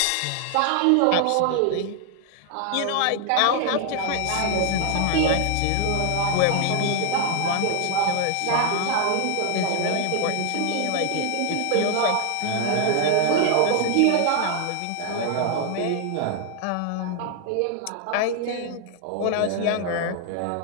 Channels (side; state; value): both; different; correlation 0.00